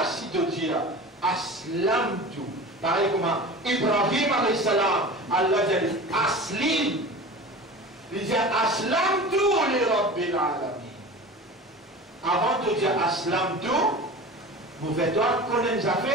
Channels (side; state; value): both; normal; correlation 0.35